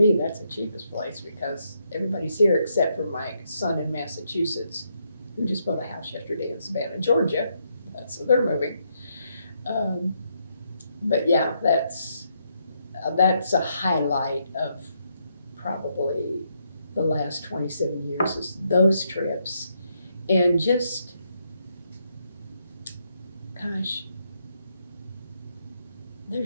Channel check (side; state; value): both; inverted; correlation -0.77